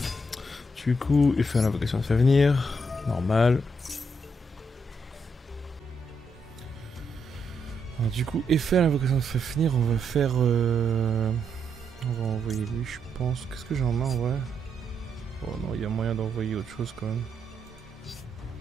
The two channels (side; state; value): both; normal; correlation 0.79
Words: Du coup, il fait l'invocation de Fafnir. Normal. Alors, du coup, et faire l'invocation de Fafnir, on va faire... On va envoyer lui, je pense. Qu'est-ce que j'ai en main, ouais. Oh non, il y a moyen d'envoyer autre chose quand même.